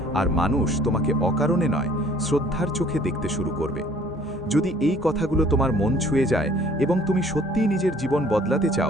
আর মানুষ তোমাকে অকারণে নয়, শ্রদ্ধার চোখে দেখতে শুরু করবে। যদি এই কথাগুলো তোমার মন ছুঁয়ে যায় এবং তুমি সত্যিই নিজের জীবন বদলাতে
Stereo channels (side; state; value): both; normal; correlation 0.56